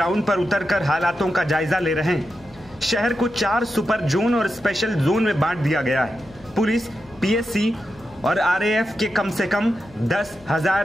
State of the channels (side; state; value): left; noise; hum, 25 dB below the sound